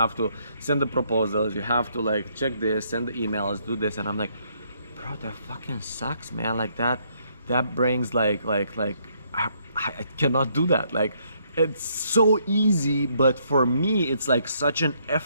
to send the proposals, you have to like check this, send the emails, do this, and I'm like, bro, that fucking sucks, man. Like that brings like I cannot do that. Like, it's so easy, but for me it's like such an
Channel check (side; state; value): both; inverted; correlation -0.71